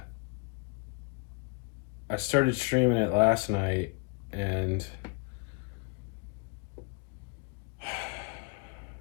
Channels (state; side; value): quieter; right; 32.3 dB